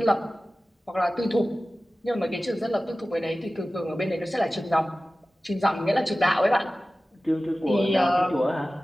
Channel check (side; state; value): both; normal; correlation 0.96